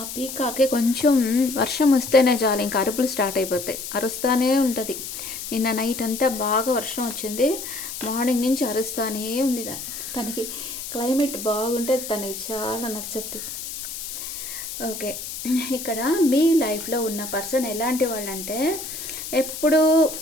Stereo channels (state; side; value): noise; left; hiss, 8 dB below the sound